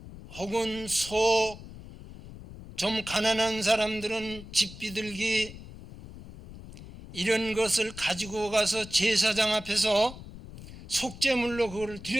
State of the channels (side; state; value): left; noise; rumble, 15 dB below the sound